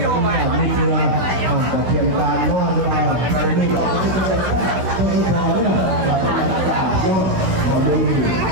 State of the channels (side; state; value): left; late; 16 ms